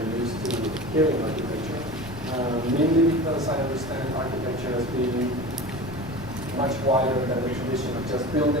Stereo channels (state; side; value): noise; left; rumble, 15 dB below the sound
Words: used to hearing architecture. Mainly because I understand architecture as being much wider than the tradition of just